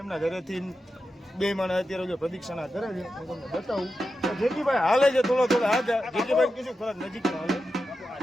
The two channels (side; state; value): both; normal; correlation 0.90